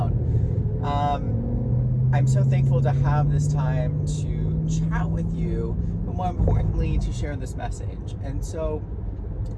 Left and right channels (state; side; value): identical; both; correlation 1.00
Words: I'm so thankful to have this time to chat with you, but more importantly, to share this message. And so